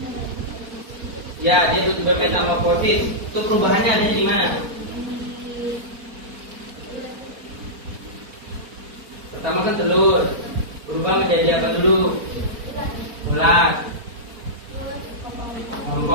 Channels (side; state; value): left; late; 4.4 ms